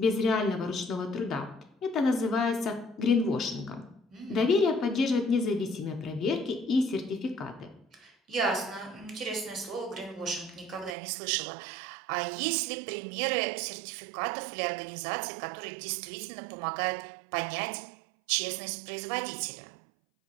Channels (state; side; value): drops out; left; at 11.0 s